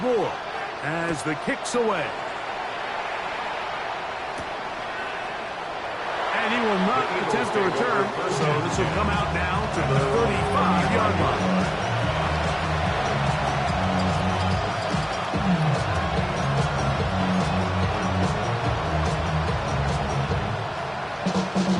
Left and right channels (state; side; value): identical; both; correlation 1.00